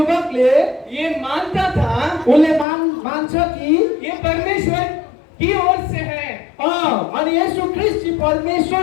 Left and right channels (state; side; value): drops out; right; at 2.7 s